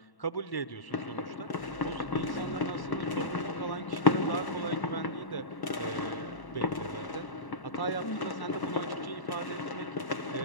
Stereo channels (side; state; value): right; late; 1.1 ms